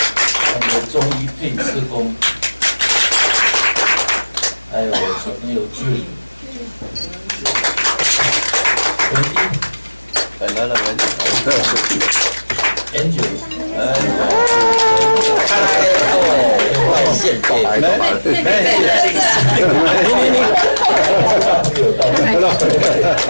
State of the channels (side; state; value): both; inverted; correlation -1.00